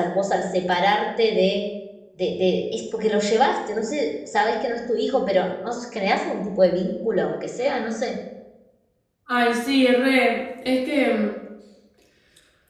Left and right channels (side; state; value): both; identical; correlation 1.00